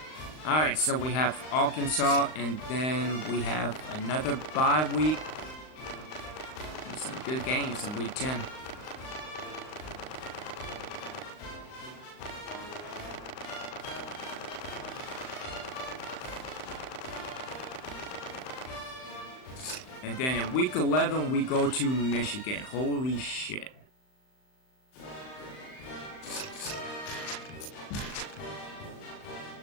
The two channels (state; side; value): late; right; 39 ms